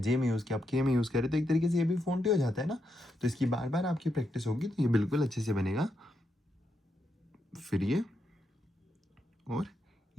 में यूज़ किया, अब के में यूज़ करें, तो एक तरीके से ये भी फॉन्ट ही हो जाता है ना। तो इसकी बार बार आपकी प्रैक्टिस होगी तो ये बिल्कुल अच्छे से बनेगा। फिर ये और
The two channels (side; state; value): both; normal; correlation 0.82